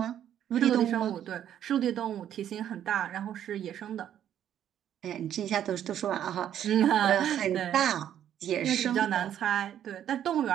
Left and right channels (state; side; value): quieter; left; 10.4 dB